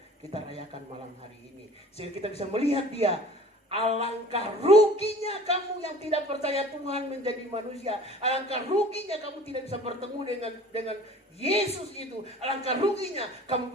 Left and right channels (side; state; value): both; normal; correlation 0.46